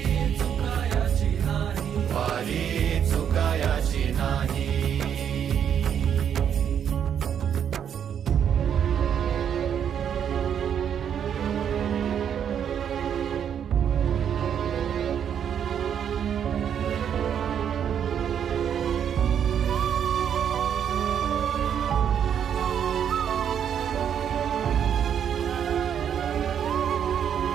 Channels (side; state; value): left; quieter; 8.6 dB